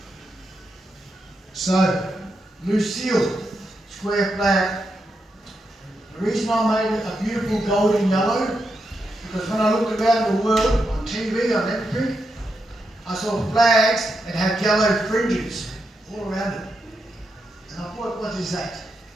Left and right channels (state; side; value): normal; both; correlation 0.84